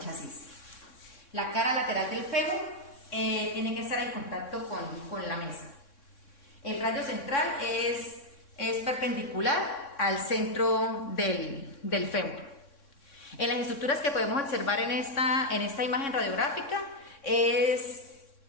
La cara lateral del fémur tiene que estar en contacto con la mesa. El radio central es perpendicular al centro del fémur. En las estructuras que podemos observar en esta imagen radiográfica es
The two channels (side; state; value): right; late; 3.6 ms